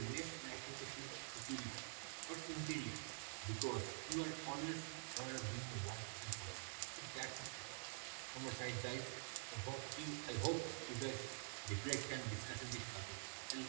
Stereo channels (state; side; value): silent; left; digital silence